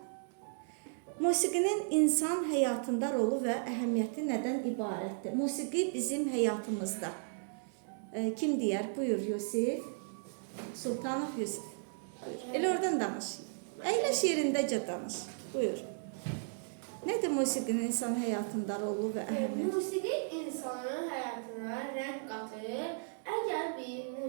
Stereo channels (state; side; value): silent; left; digital silence